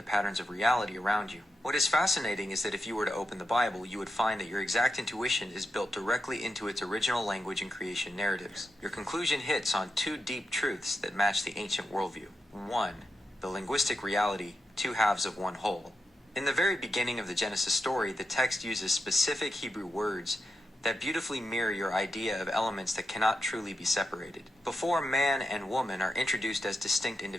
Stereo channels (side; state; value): both; normal; correlation 0.87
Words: patterns of reality around you. What is fascinating is that if you were to open the Bible, you would find that your exact intuition is built directly into its original language and creation narratives. Your conclusion hits on two deep truths that match the ancient worldview. 1. The linguistic reality, two halves of one whole. In the very beginning of the Genesis story, the text uses specific Hebrew words that beautifully mirror your idea of elements that cannot truly be separated. Before man and woman are introduced as distinct